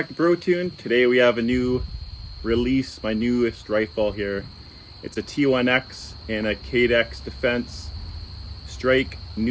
to Brotuned. Today we have a new release, my newest rifle here. It's a T1X in a Cadex Defense Strike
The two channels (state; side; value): identical; both; correlation 1.00